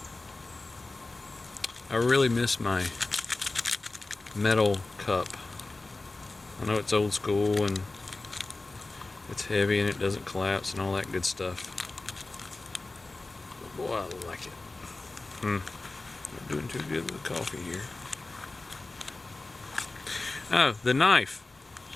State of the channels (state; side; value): quieter; right; 3.2 dB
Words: metal cup. I know it's old school and it's heavy and it doesn't collapse and all that good stuff. But boy, I like it. Not doing too good with the coffee here. Oh, the knife.